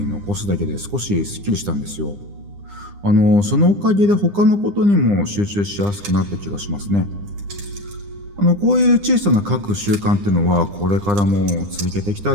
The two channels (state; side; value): late; left; 9.9 ms